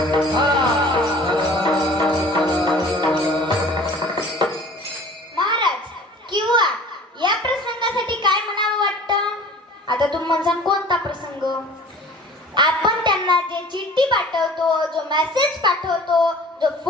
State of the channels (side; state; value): both; normal; correlation 0.46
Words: महाराज, किंवा या प्रसंगासाठी काय म्हणावं वाटतं. आता तुम्ही म्हणसान कोणता प्रसंग. आपण त्यांना जे चिठ्ठी पाठवतो, जो मेसेज पाठवतो, जो